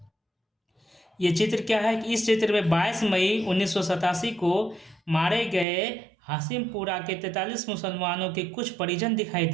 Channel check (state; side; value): drops out; left; at 5.7 s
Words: ये चित्र क्या है कि इस चित्र में 22 मई 1987 को मारे गए हाशिमपुरा के 43 मुसलमानों के कुछ परिजन दिखाई